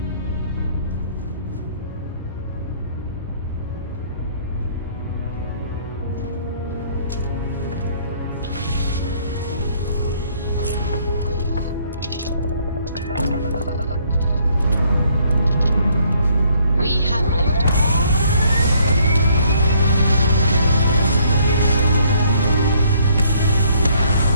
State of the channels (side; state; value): both; inverted; correlation -0.65